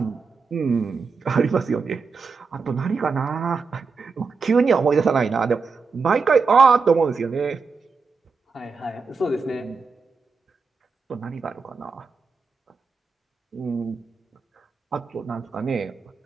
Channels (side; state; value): left; quieter; 4.8 dB